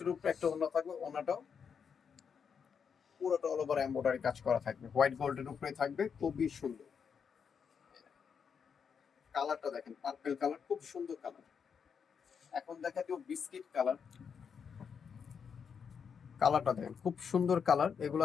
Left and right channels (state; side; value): quieter; right; 6.7 dB